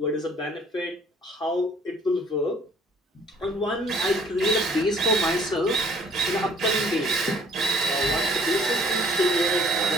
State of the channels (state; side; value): normal; both; correlation 0.57